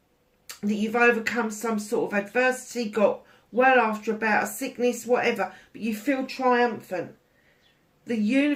that you've overcome some sort of adversity, got well after about a sickness, whatever, but you feel triumphant. The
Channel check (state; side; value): identical; both; correlation 1.00